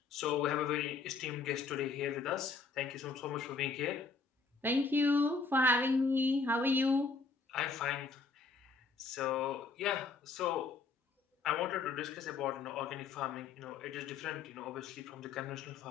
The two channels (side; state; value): right; quieter; 4.5 dB